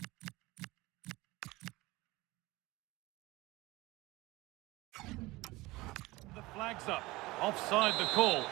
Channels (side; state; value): left; quieter; 20.7 dB